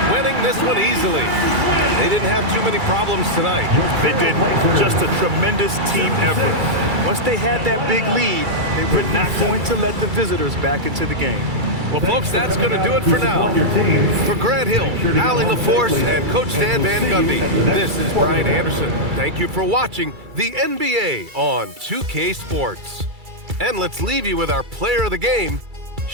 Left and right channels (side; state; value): left; late; 2.3 ms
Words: winning this one easily. They didn't have too many problems tonight. They did. Just a tremendous team effort. Once they had that big lead, they were not going to let the visitors back into the game. Well, folks, that's going to do it for now. For Grant Hill, Allie LaForce, and Coach Dan Van Gundy, this is Brian Anderson. Thank you for watching the NBA on 2K Sports. And let's leave you with our player of the game,